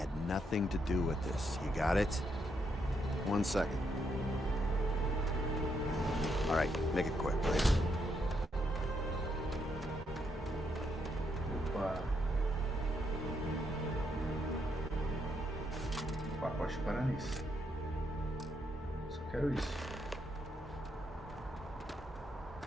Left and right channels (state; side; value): normal; both; correlation 0.78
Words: nothing to do with this. You got it? 1 second. Alright, make it quick, please. Opa. Pacote para nisso. Só quero isso.